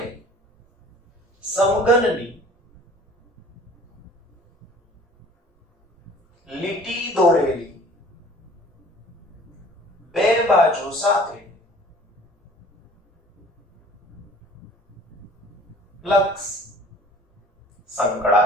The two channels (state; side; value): normal; both; correlation 0.49